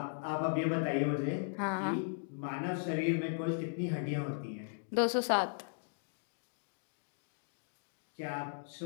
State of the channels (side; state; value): right; silent; digital silence